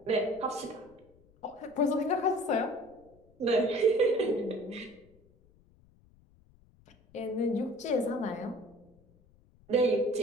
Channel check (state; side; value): noise; left; rumble, 29 dB below the sound